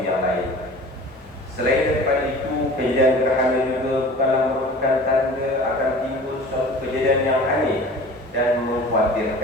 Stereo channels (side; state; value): both; normal; correlation 0.41